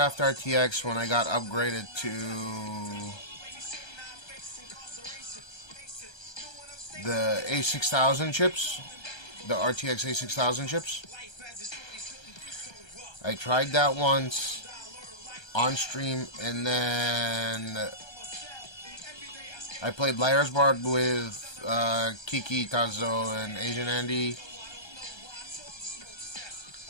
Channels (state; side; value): late; right; 1.3 ms